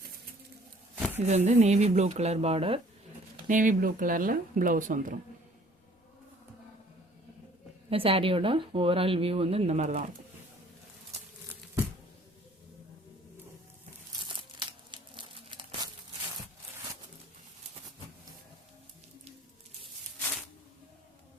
இது வந்து navy blue colour border. Navy blue கலரில் ப்ளவுஸ் வந்துடும். இந்த சாரியோட ஓவரால் வியூ வந்து இந்த மாதிரி தான் இருக்கும்.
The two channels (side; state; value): both; normal; correlation 0.55